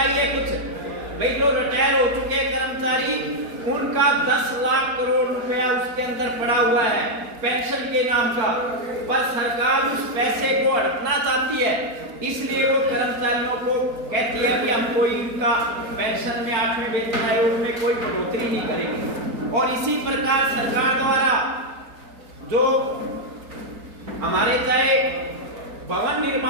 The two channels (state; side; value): late; left; 4.5 ms